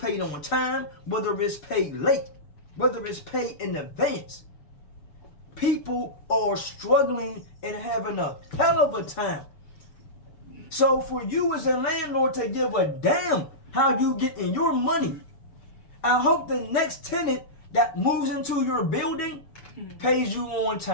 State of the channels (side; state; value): right; late; 7.0 ms